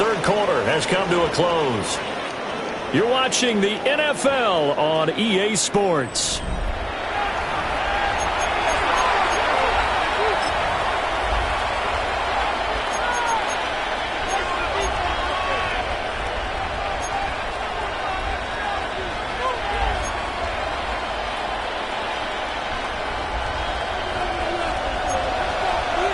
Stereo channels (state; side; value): identical; both; correlation 1.00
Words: quarter has come to a close. You're watching the NFL on EA Sports.